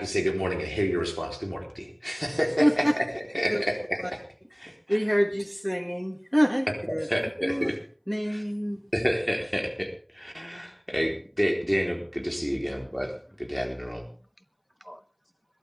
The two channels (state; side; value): identical; both; correlation 1.00